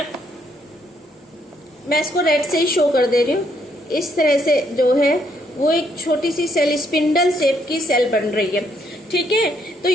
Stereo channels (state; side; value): normal; both; correlation 0.72